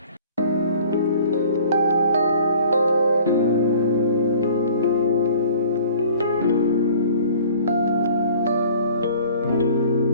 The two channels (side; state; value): both; inverted; correlation -0.50